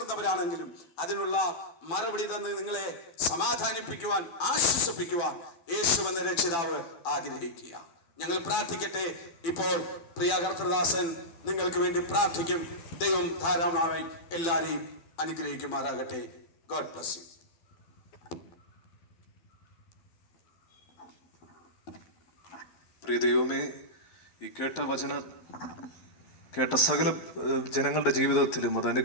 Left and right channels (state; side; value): late; right; 12 ms